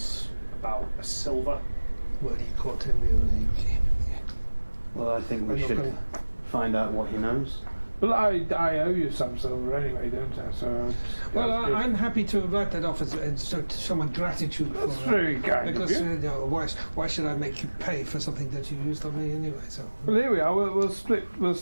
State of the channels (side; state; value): both; inverted; correlation -1.00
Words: about a silver. Well, you caught him. Well, I think we should find out what he knows. Well, I owe you some silver anyway, don't I? So. Well, I'm happy to write that off to show my gratitude for That's very kind because of you. Why should I make you pay for something that you used on me anyway? So. Well, here we are. We'll